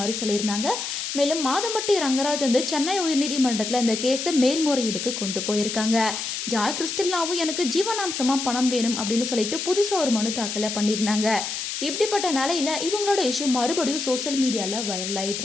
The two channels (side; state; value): left; noise; hiss, 4 dB below the sound